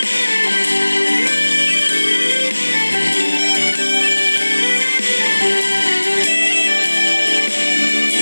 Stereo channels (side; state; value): both; inverted; correlation -1.00